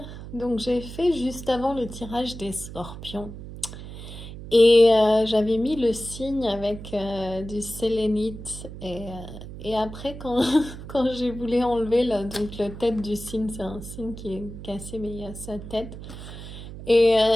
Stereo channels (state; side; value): noise; right; hum, 12 dB below the sound